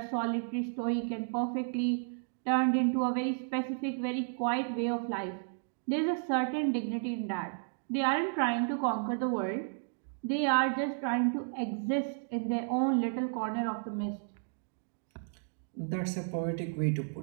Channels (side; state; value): left; silent; digital silence